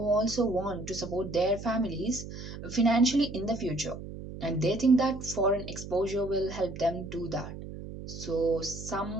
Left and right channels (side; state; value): right; noise; hum, 11 dB below the sound